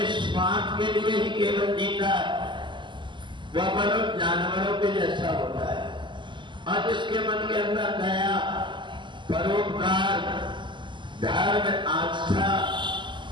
स्वार्थ के लिए ही केवल जीता है वह मनुष्य जानवरों के जैसा होता है, और जिसके मन के अंदर दया, परोपकार, धर्म, आस्था,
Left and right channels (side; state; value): left; late; 0.23 ms